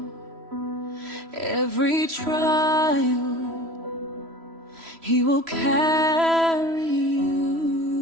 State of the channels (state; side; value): late; left; 3.0 ms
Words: every trial, He will carry